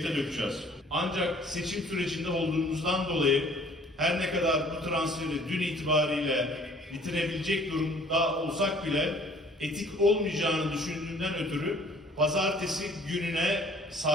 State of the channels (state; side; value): normal; both; correlation 0.55